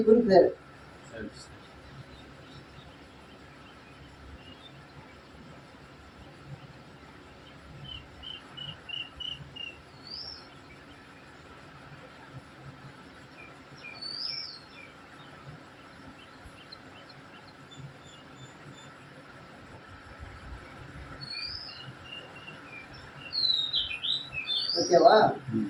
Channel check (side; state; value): both; identical; correlation 1.00